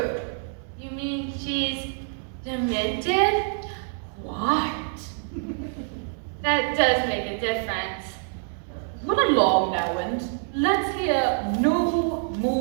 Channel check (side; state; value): left; silent; 61 dB below the other